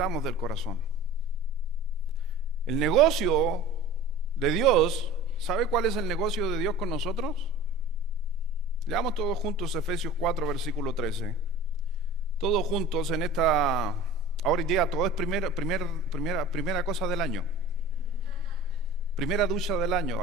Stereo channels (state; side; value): normal; both; correlation 0.40